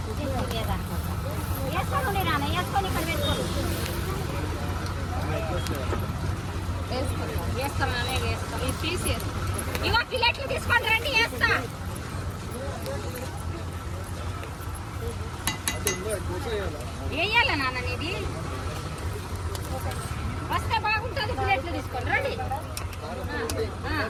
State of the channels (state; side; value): identical; both; correlation 1.00